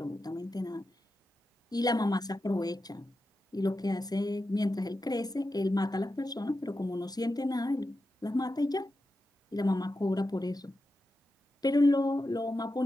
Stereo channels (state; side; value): normal; both; correlation 0.90